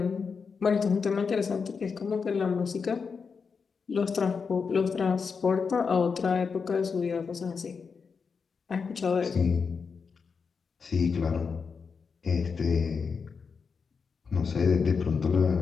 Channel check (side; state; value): right; quieter; 5.5 dB